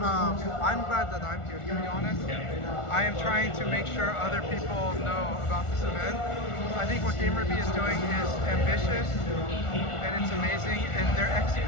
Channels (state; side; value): late; right; 1.4 ms